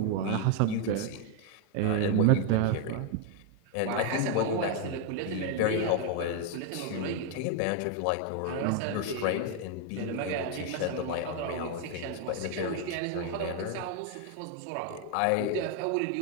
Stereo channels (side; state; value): both; different; correlation 0.00